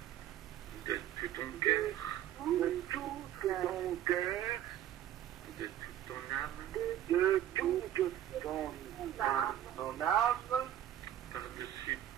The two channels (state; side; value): quieter; left; 11.6 dB